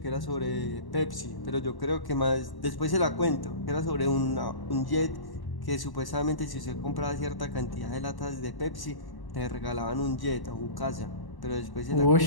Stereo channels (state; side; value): late; right; 1.1 ms